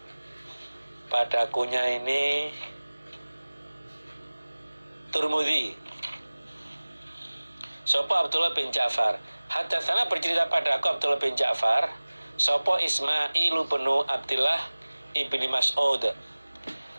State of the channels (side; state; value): both; inverted; correlation -1.00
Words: Padakunya ini Turmudi. Sapa Abdullah bin Ja'far. Hadatsana bercerita padaku Abdullah bin Ja'far. Sapa Ismail bin Abdillah ibni Mas'ud.